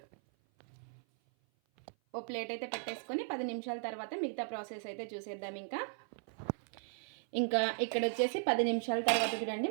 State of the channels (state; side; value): silent; left; 53 dB below the other